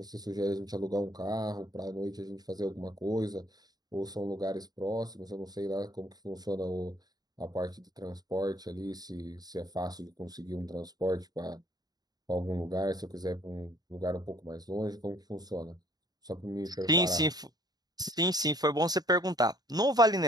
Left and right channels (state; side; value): late; left; 0.19 ms